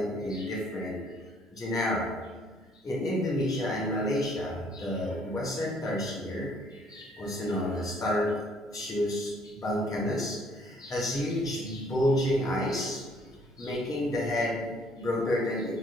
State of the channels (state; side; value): normal; both; correlation 0.62